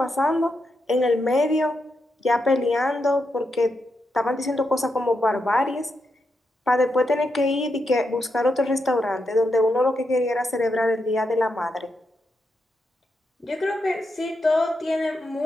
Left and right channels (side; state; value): both; normal; correlation 0.84